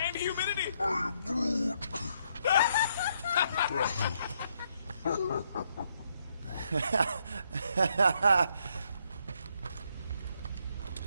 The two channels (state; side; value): inverted; both; correlation -0.74